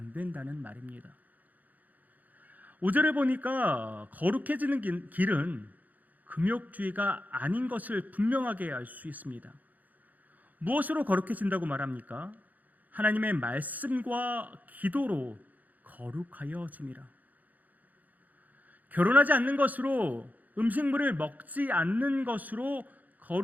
된다는 말입니다. 5절을 보니까 거룩해지는 길은 금욕주의가 아닌 것을 분명하게 알 수 있습니다. 무엇으로 거룩해진다고 말합니까? 하나님의 말씀과 기도로 거룩하여짐이라. 결혼하지 않는 것으로, 음식물을 먹지 않는 것으로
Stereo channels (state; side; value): late; left; 0.081 ms